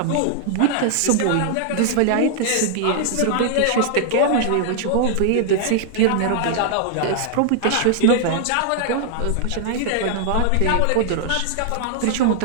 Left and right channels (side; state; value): both; different; correlation 0.00